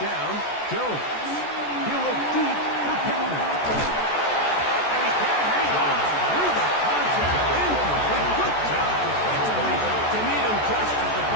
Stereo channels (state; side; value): late; right; 14 ms